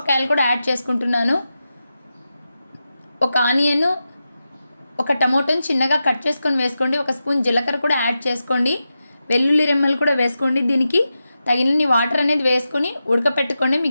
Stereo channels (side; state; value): both; inverted; correlation -0.90